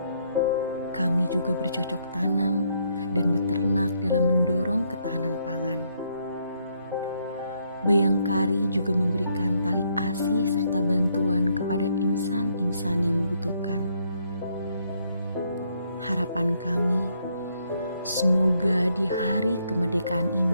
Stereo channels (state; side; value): inverted; both; correlation -0.72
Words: Kami juga bercocok tanam dan beternak dalam mendorong ketahanan pangan. Bayangkari juga memberikan tali asi serta bantuan kepada insan-insan yang membutuhkan. Harapan kami, semoga di hari kemerdekaan